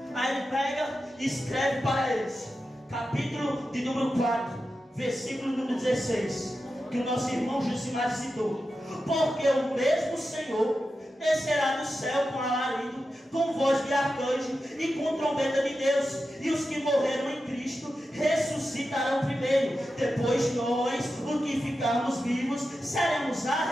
Aí ele pega e escreve para eles, capítulo de número 4, versículo número 16, que o nosso irmão Josimar citou: porque o mesmo Senhor descerá do céu com alarido, com voz de arcanjo e com trombeta de Deus, e os que morreram em Cristo ressuscitarão primeiro. Depois nós, os que ficarmos vivos, seremos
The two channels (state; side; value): normal; both; correlation 0.91